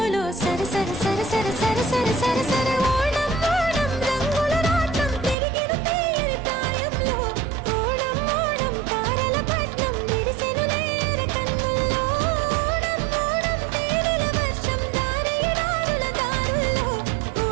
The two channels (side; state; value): left; drops out; at 5.4 s